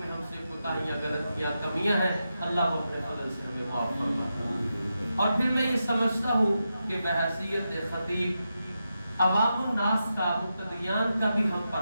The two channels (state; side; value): inverted; both; correlation -0.88